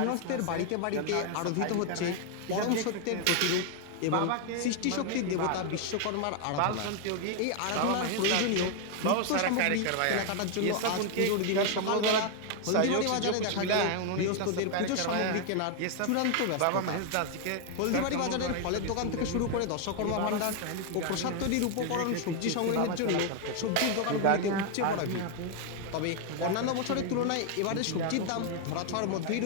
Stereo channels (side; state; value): both; different; correlation 0.00